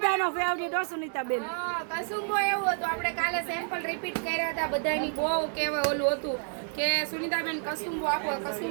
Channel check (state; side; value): silent; left; 58 dB below the other